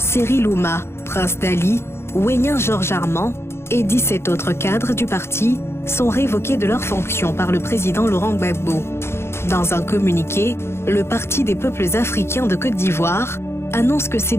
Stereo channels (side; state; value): right; late; 0.12 ms